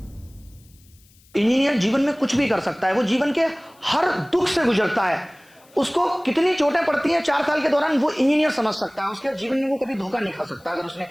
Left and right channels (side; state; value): left; noise; hiss, 30 dB below the sound